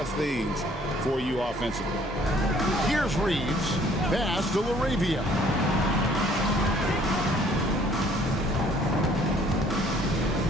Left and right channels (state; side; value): normal; both; correlation 0.59